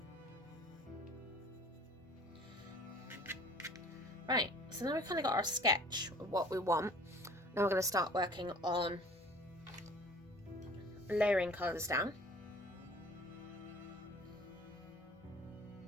Right, so now we've kind of got our sketch of what we want. Now we're going to start working on layering colours down.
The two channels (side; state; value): both; normal; correlation 0.48